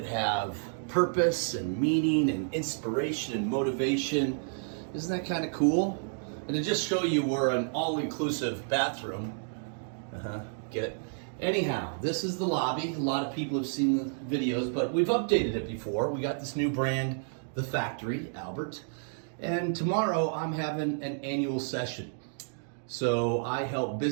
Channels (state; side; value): silent; left; digital silence